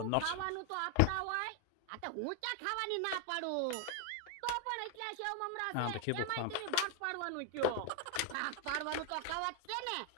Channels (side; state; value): both; different; correlation 0.01